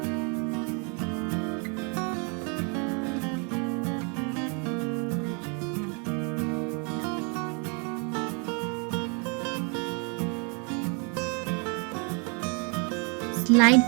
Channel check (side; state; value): left; quieter; 35.6 dB